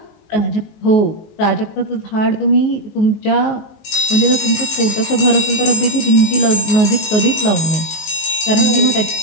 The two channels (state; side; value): late; right; 19 ms